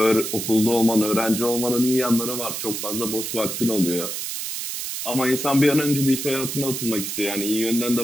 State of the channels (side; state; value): right; noise; hiss, 5 dB below the sound